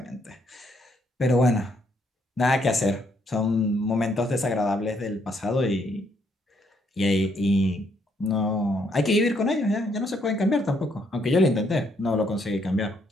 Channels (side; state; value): both; normal; correlation 0.72